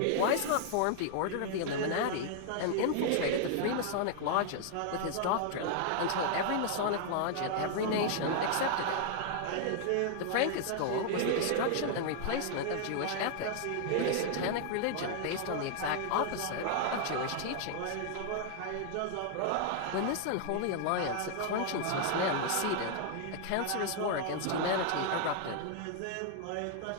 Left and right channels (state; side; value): different; both; correlation 0.00